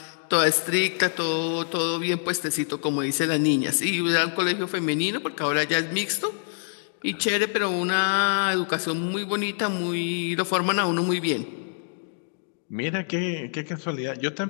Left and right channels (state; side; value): silent; right; digital silence